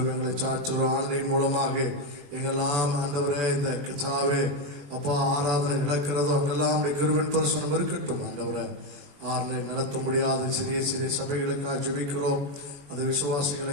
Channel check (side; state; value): left; late; 21 ms